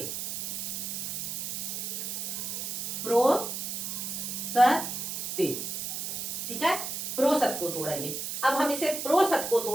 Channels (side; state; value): right; noise; hiss, 4 dB below the sound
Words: प्रोसते। ठीक है, प्रोसत को तोड़ेंगे। अब हम इसे प्रोसत को